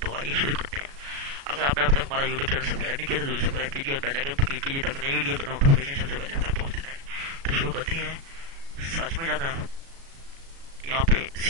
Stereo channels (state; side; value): late; left; 36 ms